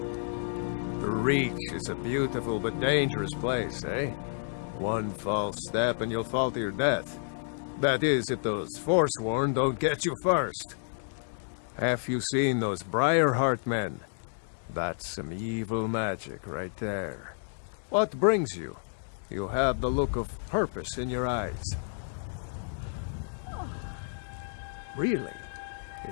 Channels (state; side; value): silent; right; digital silence